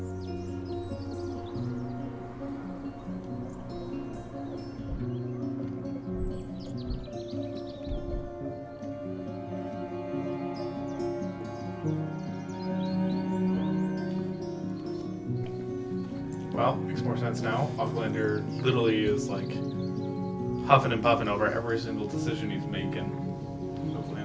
Well, makes more sense now. Aucklander literally is like huffing and puffing over every single decision he's making.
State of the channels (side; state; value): both; identical; correlation 1.00